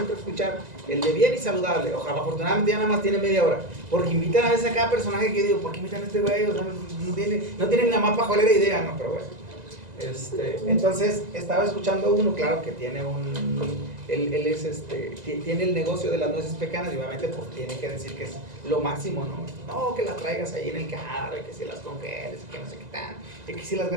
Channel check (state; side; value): late; left; 2.0 ms